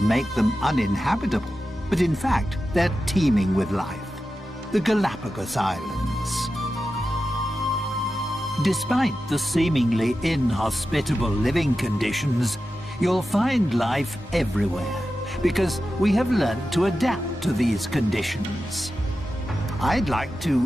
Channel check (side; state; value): both; normal; correlation 0.92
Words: make them uninhabitable. But in fact, they're teeming with life. The Galapagos Islands. Despite the seemingly inhospitable living conditions, you'll find life everywhere, because we have learned to adapt to these conditions. I'd like to